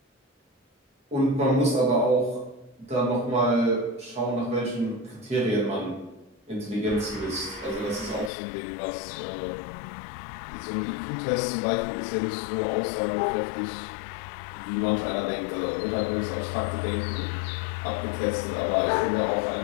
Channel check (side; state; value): right; drops out; at 8.3 s